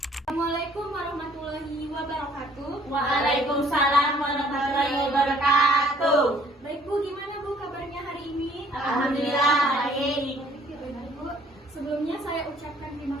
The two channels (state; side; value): normal; both; correlation 0.60